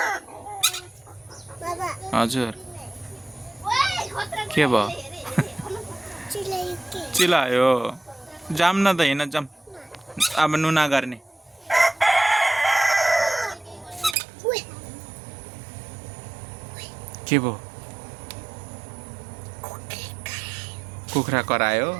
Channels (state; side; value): drops out; left; at 14.2 s